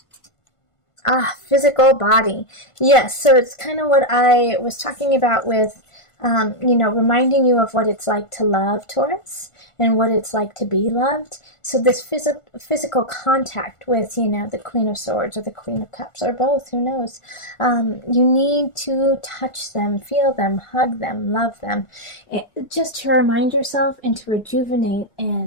Physical body. Yes, so it's kind of what I was talking about with, reminding you of what it's like to love, Taurus, and what it's like to be loved. So this physical contact with, the Queen of Swords or the Queen of Cups, or both, who knows. You need to touch them, feel them, hug them, love them, just to remind yourself and to rejuvenate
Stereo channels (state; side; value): late; right; 1.4 ms